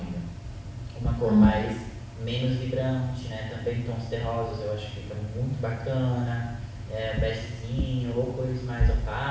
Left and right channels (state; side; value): identical; both; correlation 1.00